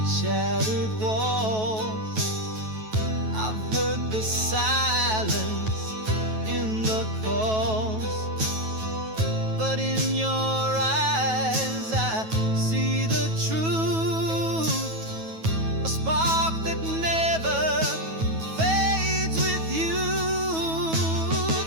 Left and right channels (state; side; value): late; left; 9.2 ms